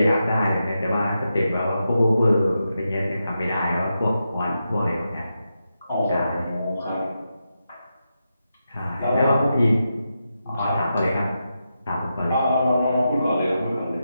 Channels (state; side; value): inverted; both; correlation -0.87